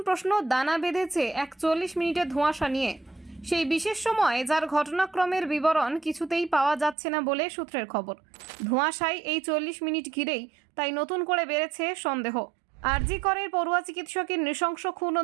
প্রশ্ন দানা বেঁধেছে 41 মিনিটের ধোঁয়াশা নিয়ে। সেই বিশেষ সময় যার ঘটনাক্রমের বিবরণ কিছুতেই পাওয়া যাচ্ছে না বলে সূত্রের খবর। ধোঁয়াশায় এই 40 মিনিট ঘিরেই তাই নতুন করে বেড়েছে সন্দেহ। আরজি করের পড়ুয়া চিকিৎসকের নৃশংস খুন ও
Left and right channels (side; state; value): left; drops out; at 7.0 s